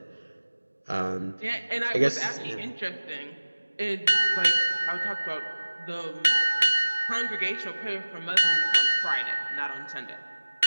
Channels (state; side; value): inverted; both; correlation -1.00